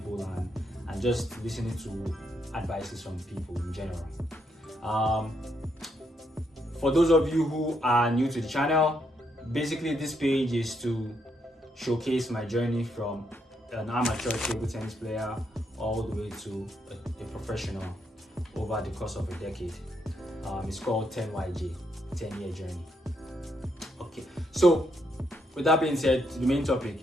and just listening to advices from people in general. For those of you who are new to the channel, basically this page is to showcase my journey from an amateur table tennis player all the way to a professional over the course of a decade. It's called 10YJ, 10-year journey. Okay, so with that being said, to the main topic.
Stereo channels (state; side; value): normal; both; correlation 0.77